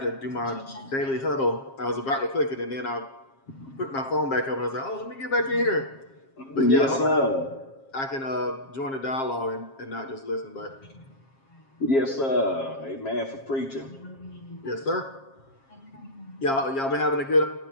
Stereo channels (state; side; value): late; right; 7.5 ms